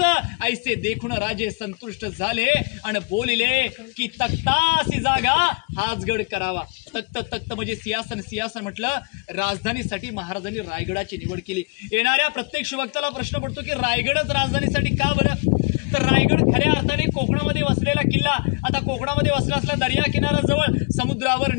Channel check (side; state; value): right; quieter; 30.7 dB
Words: ऐसे देखून राजे संतुष्ट झाले आणि बोलिले की तख्तासी जागा हाच गड करावा. तख्त म्हणजे सिंहासन. सिंहासन म्हटलं राजधानीसाठी महाराजांनी रायगडाची निवड केली. येणाऱ्या प्रत्येक शिवभक्ताला प्रश्न पडतो की रायगडच राजधानीसाठी का बरं? तर रायगड खऱ्या अर्थाने कोकणामध्ये वसलेला किल्ला. आता कोकणामध्ये वसला असला दर्या किनाऱ्याजवळ समुद्रावर